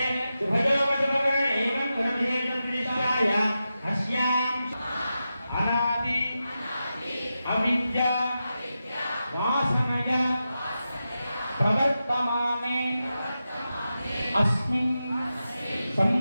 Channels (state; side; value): inverted; both; correlation -0.90